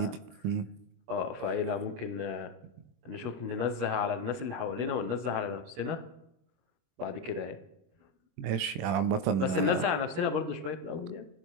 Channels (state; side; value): late; left; 24 ms